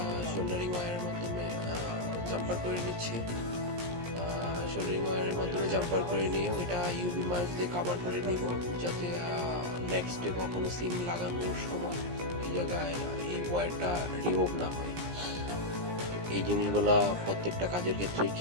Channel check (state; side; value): late; left; 17 ms